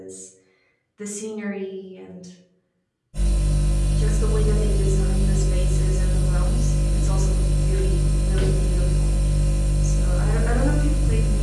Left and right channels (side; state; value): both; identical; correlation 1.00